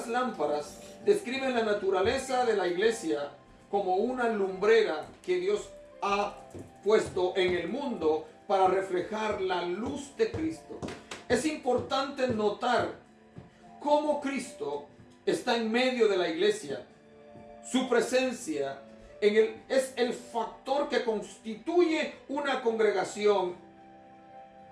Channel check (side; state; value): both; identical; correlation 1.00